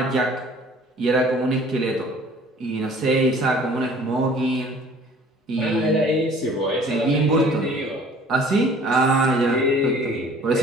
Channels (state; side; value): normal; both; correlation 0.51